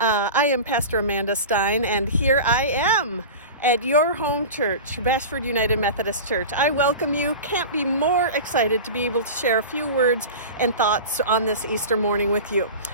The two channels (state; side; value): inverted; both; correlation -0.31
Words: am Pastor Amanda Stein, and here I am at your home church, Bashford United Methodist Church. I welcome you. Can't be more excited to be able to share a few words and thoughts on this Easter morning with you.